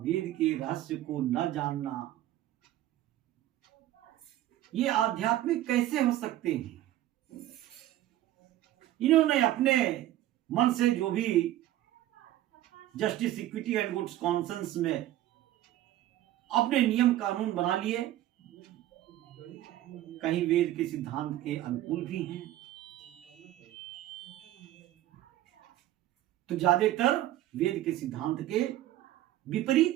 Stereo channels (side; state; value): left; quieter; 14.0 dB